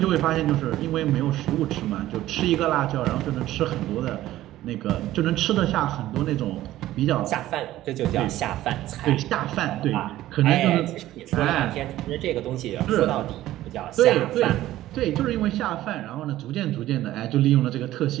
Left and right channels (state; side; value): quieter; left; 14.7 dB